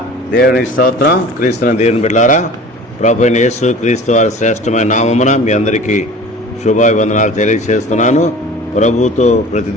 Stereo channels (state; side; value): normal; both; correlation 0.41